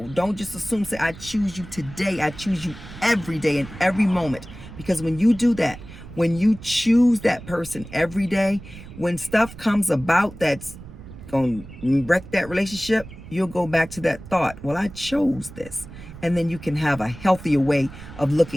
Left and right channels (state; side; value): noise; right; rumble, 15 dB below the sound